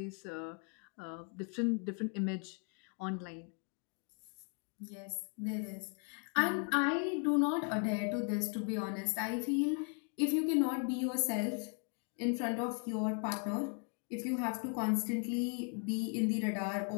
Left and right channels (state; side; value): quieter; right; 39.9 dB